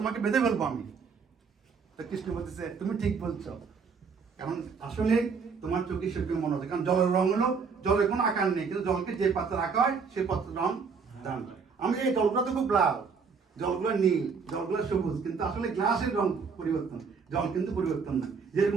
বেঁধে ফেলবো আমি। তো কৃষ্ণ বলতেছে তুমি ঠিক বলছো, কারণ আসলে তোমার চোখে সেরকম মনে হচ্ছে, কারণ জলের রং হলো, জলের কোনো আকার নেই, কিন্তু জলকে যে পাত্রে রাখা হয় সেই পাত্রের রং দান হয়। আমি এই জলগুলো তো খুব লাল, জলগুলো নীল, জলগুলো সবুজ, কিন্তু আসলে গ্লাসের রং পরিবর্তন, জল কিন্তু পরিবর্তন না।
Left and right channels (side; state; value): left; quieter; 5.5 dB